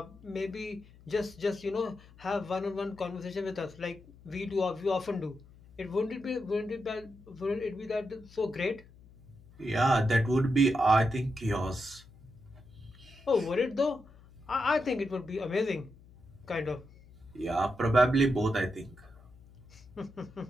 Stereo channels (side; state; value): left; noise; hum, 23 dB below the sound